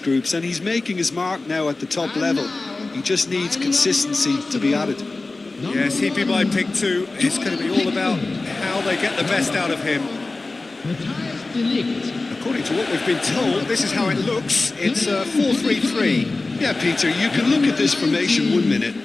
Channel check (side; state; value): right; quieter; 3.4 dB